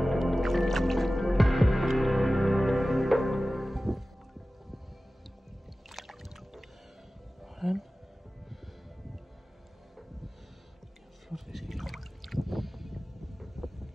Sådan. Flot fisk.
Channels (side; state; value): both; normal; correlation 0.96